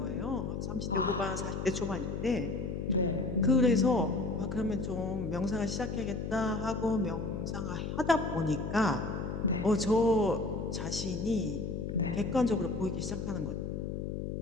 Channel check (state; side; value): noise; left; hum, 4 dB below the sound